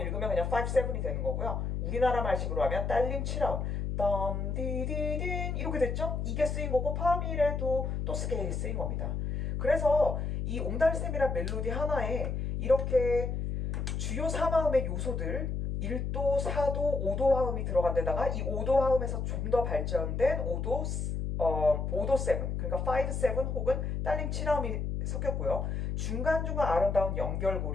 읽으면 그냥 5, 7이 되는 거고요. 우리나라 말식으로 하면 딸림 7화음 덤, 디, 디, 딘 이렇게 됐죠? 이게 쓰인 거고 파미레도 또 스케일이 쓰인 겁니다. 그래서 이 옹달샘이란 멜로디 하나에 이렇게 주요 3화음의 요소들 1도, 4도, 5도 화음이 들어간 데다가 이 5도 화음에서 좀 더 발전된 5도 7, 그러니까 5, 7 혹은 딸림 7화음이 섞였고요. 중간중간 아름다운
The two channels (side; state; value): left; noise; hum, 2 dB below the sound